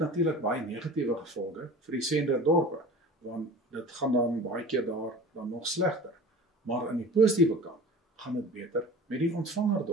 baie negatiewe gevolge vir die senderdorpe, want dit gaan dan baie keer daar dan nog slegter. Maar aan die positiewe kant gaan dit beter met die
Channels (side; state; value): both; normal; correlation 0.38